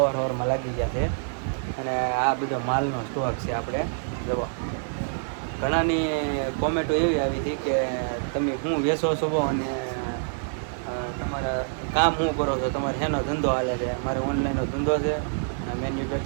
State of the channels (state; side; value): silent; left; digital silence